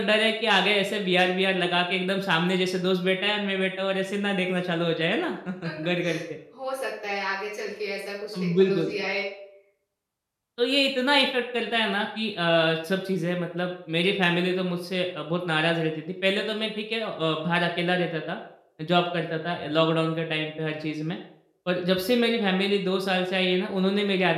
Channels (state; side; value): identical; both; correlation 1.00